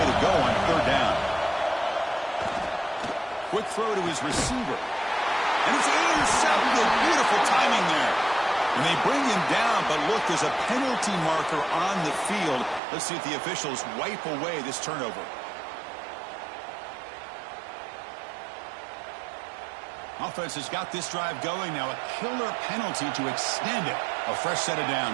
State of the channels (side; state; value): left; drops out; at 12.8 s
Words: to go on 3rd down. Quick throw to his receiver. And it's intercepted. Beautiful timing there. And they bring him down, but look, there's a penalty marker on the field. Let's see if the officials wipe away this turnover. Offense has got this drive going now. A killer penalty to extend it. A fresh set of